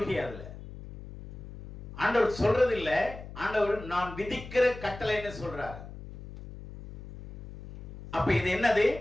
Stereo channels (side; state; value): left; noise; hum, 13 dB below the sound